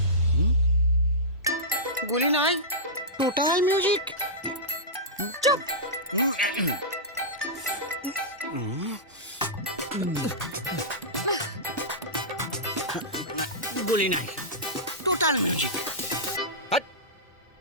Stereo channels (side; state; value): both; normal; correlation -0.14